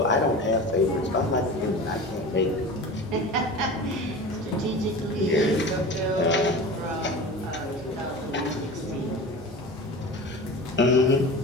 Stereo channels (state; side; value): normal; both; correlation 0.33